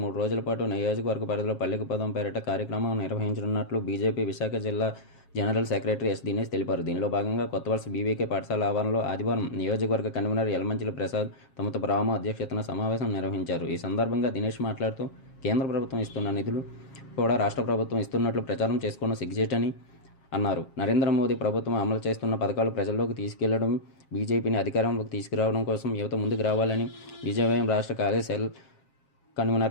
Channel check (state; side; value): late; right; 7.4 ms